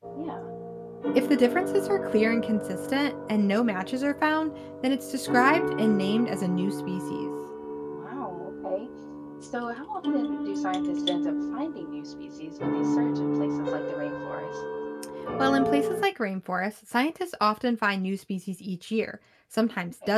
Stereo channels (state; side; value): identical; both; correlation 1.00